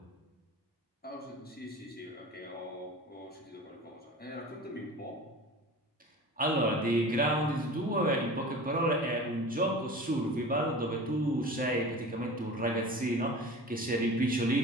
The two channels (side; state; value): both; normal; correlation 0.37